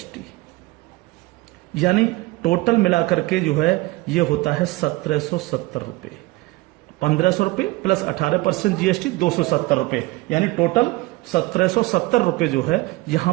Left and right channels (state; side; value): quieter; left; 20.9 dB